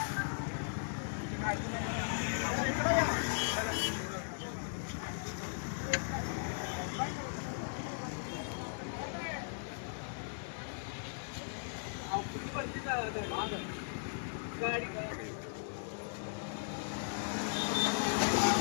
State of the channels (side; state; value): right; silent; digital silence